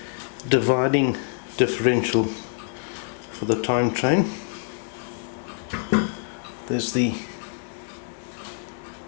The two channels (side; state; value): right; silent; 61 dB below the other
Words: dividing differential for the time train. There's the